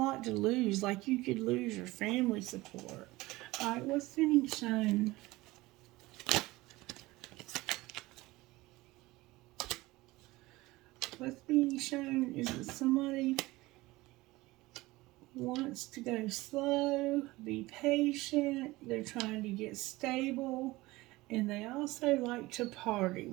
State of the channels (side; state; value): left; quieter; 19.9 dB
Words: to lose, like you could lose your family support. Alright, what's being shown? What's being shown is that somebody wants to go slow, be patient, they're trying to get stable, and they also like to party